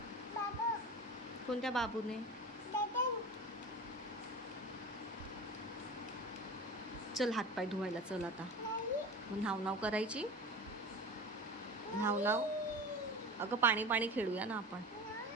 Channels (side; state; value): both; normal; correlation 0.33